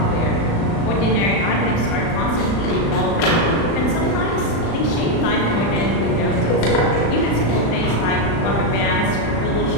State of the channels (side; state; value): right; late; 36 ms